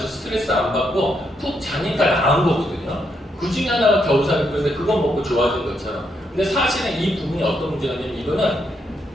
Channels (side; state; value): both; normal; correlation 0.78